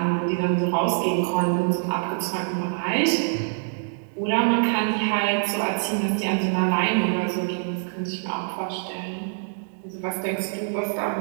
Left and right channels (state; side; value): silent; left; 62 dB below the other